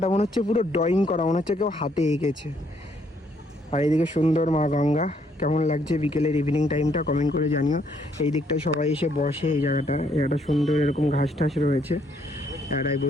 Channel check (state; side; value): normal; both; correlation 0.69